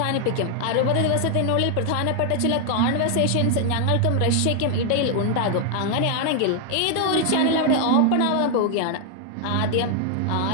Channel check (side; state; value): both; different; correlation 0.00